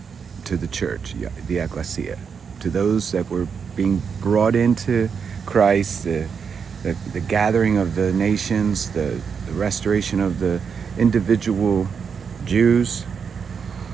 to the church, the ecclesia, to those that were being brought into Christ, the gathering of the nations, the restoration of the individual Jews.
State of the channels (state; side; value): quieter; left; 6.4 dB